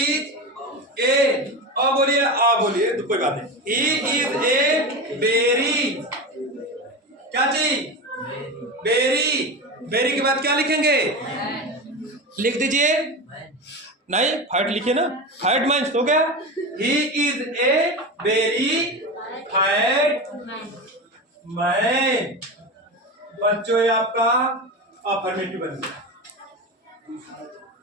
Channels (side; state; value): both; normal; correlation 0.23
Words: अब बोलिए, बोलिए तो कोई बात नहीं। He is a berry. क्या चीज? बेरी। बेरी के बाद क्या लिखेंगे? लिख दीजिए। नहीं, फैट लिखिए ना। फैट मैन हो गया। He is a berry fat man. बच्चों, ये आपका अफर्मेटिव बन गया।